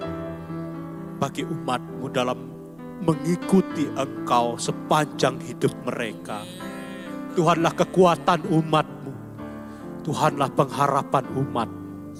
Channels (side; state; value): left; noise; rumble, 30 dB below the sound